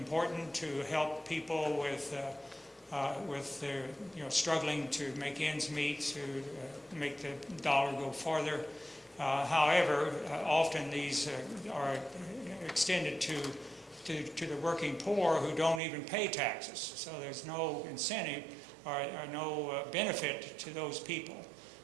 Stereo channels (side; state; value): left; drops out; at 15.8 s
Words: to help people with their, struggling to make ends meet, to make the dollar go farther. However, often these are extended to the working poor who don't even pay taxes. So there's no incentive or no benefit to those people.